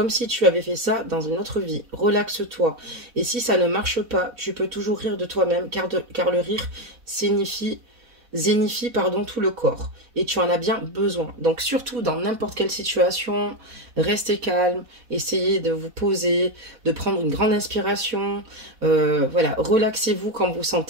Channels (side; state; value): left; late; 4.1 ms